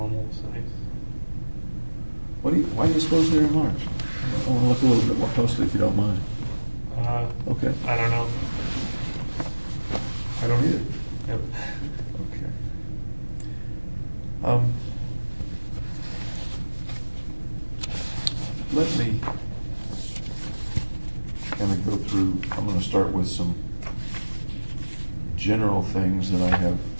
size. Why do you suppose they're enlarged? I want to look a little bit more closely, if you don't mind. Okay. I don't know. I don't either. Yep. Okay. Let me kind of go through. I'm going to start with some general things that I have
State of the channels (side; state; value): both; inverted; correlation -1.00